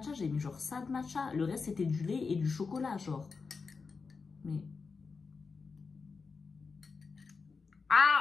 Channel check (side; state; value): right; quieter; 4.8 dB